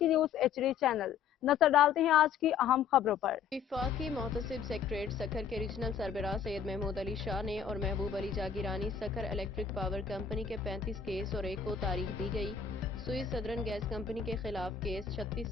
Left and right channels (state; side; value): quieter; right; 7.2 dB